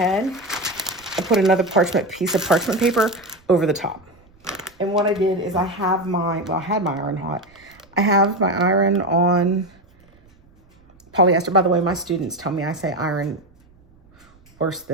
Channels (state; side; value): noise; right; rumble, 30 dB below the sound